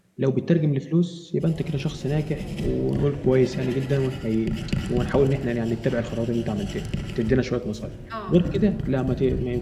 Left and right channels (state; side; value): identical; both; correlation 1.00